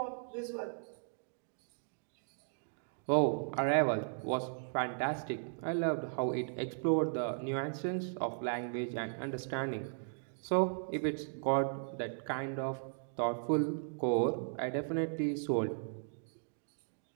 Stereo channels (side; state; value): left; silent; digital silence